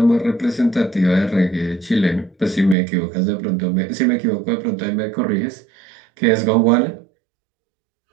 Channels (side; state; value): left; drops out; at 2.8 s